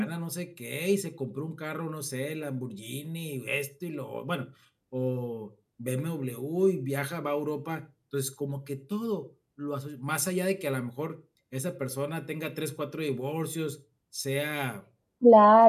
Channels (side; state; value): both; identical; correlation 1.00